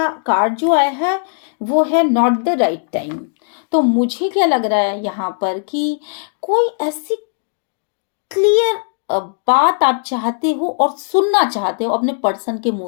कार्ड जो आया है वो है नॉट द राइट टाइम। तो मुझे क्या लग रहा है यहाँ पर कि कोई ऐसी क्लियर बात आप चाहते हो और सुनना चाहते हो अपने पर्सन के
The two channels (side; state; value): right; silent; digital silence